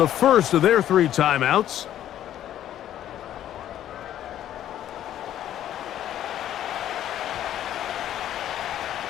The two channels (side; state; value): right; quieter; 11.6 dB